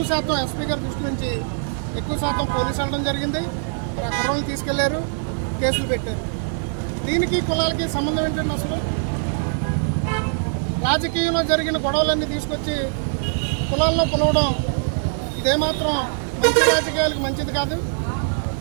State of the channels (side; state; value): left; silent; digital silence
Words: శాతం ఎస్పీ గారి దృష్టి నుంచి ఎక్కువ శాతం పోలీసు వెళ్ళడం జరిగింది. మరి ఆ కుర్రలు తీసుకెళ్లారు, కేసులు పెట్టారు. దీనికి కులాలకి సంబంధం ఏంటంటే అసలు రాజకీయంలో జరిగిన గొడవలన్నీ తీసుకొచ్చి కులాల్లో పులవడం ఇదేమాత్రం మంచి రాజకీయాలకు మంచిది కాదు.